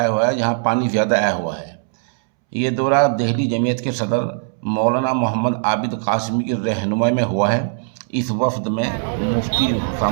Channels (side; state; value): left; silent; 66 dB below the other